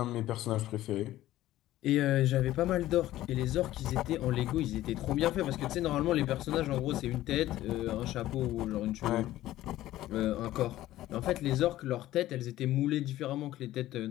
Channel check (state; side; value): quieter; right; 14.9 dB